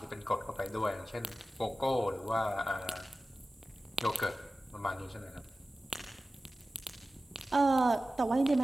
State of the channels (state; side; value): normal; both; correlation 0.95